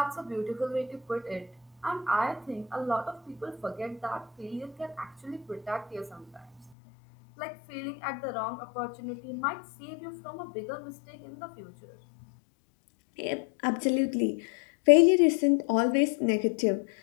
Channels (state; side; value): drops out; right; at 6.7 s